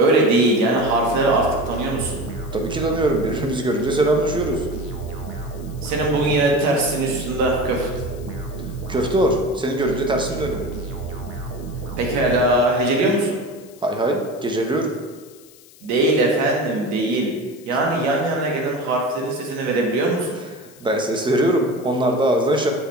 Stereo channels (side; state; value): left; noise; hiss, 24 dB below the sound